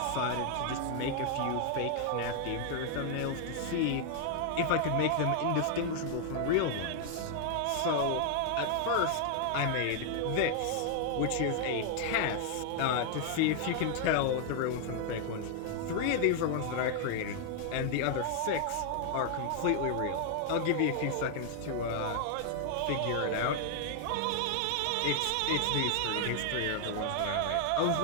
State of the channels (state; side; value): different; both; correlation 0.00